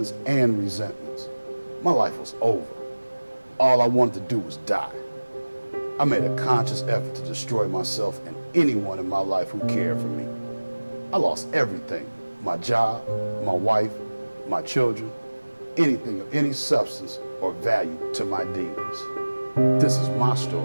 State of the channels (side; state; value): both; inverted; correlation -1.00